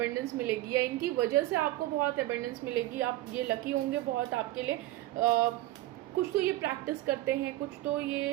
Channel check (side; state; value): left; quieter; 16.4 dB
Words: मिलेगी, या इनकी वजह से आपको बहुत एबेंडेंस मिलेगी, आप ये लकी होंगे बहुत आपके लिए। कुछ तो ये प्रैक्टिस करते हैं, कुछ तो